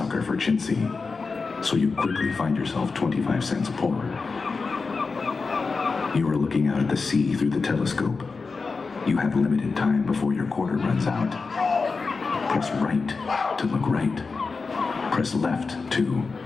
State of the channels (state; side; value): quieter; right; 4.4 dB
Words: for chintzy, so you quickly find yourself 25 cents poorer. You are looking out at the sea through the telescope. You have limited time before your quarter runs out. Press right to look right. Press left to,